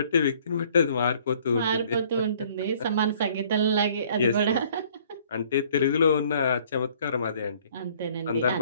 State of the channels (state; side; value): inverted; both; correlation -0.58